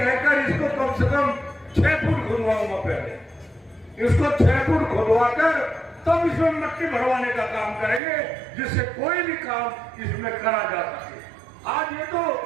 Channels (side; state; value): left; drops out; at 8.0 s